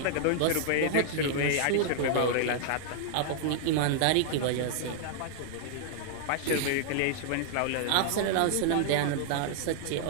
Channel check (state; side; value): different; both; correlation -0.01